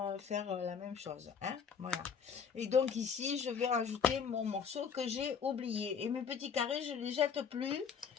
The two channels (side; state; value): right; quieter; 6.7 dB